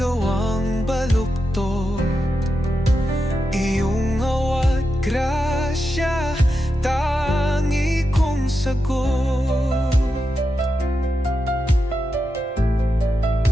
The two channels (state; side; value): normal; both; correlation 0.88